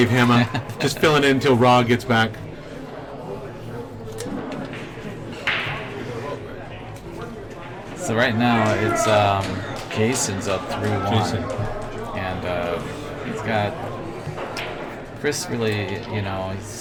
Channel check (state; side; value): identical; both; correlation 1.00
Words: Hema. Just filling in until Raw gets back. So right now it's Jason's up 3-1. Jason. And he's got Chris really, you know,